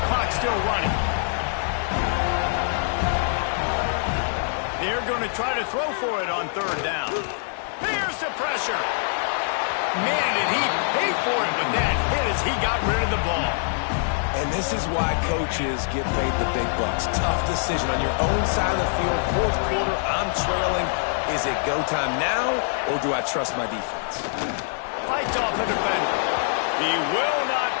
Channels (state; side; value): silent; right; 62 dB below the other